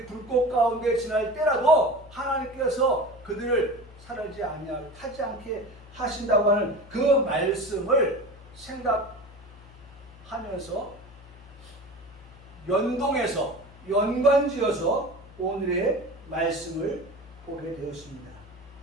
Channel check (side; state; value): left; noise; hum, 21 dB below the sound